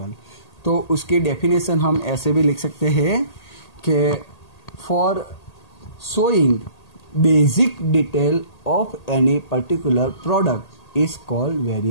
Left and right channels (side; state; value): right; late; 1.8 ms